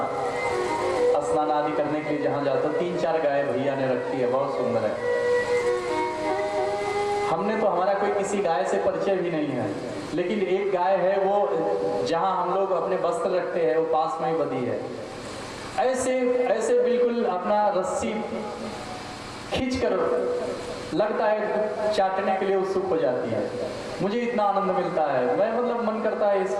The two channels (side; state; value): both; identical; correlation 1.00